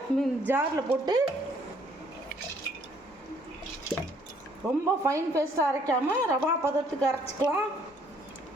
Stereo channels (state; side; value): normal; both; correlation 0.64